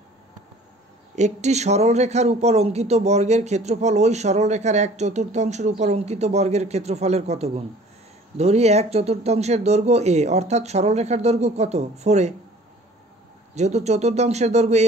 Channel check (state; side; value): normal; both; correlation 0.50